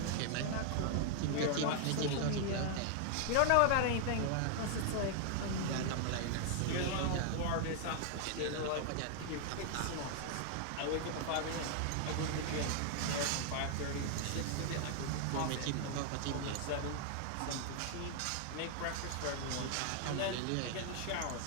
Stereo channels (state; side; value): different; both; correlation 0.00